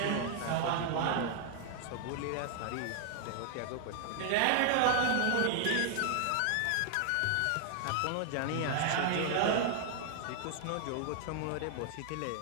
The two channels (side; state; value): both; different; correlation 0.00